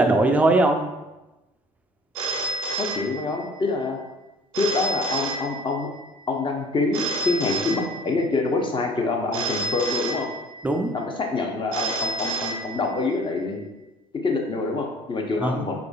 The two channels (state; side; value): normal; both; correlation 0.52